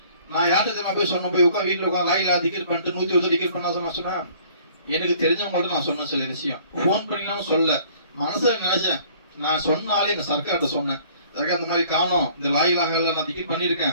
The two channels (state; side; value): inverted; both; correlation -0.56